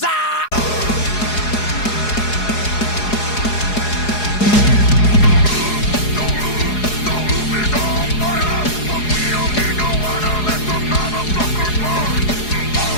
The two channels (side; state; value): right; late; 4.8 ms